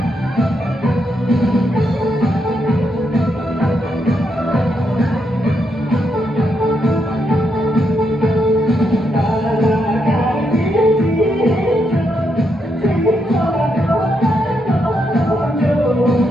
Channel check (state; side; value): normal; both; correlation 0.80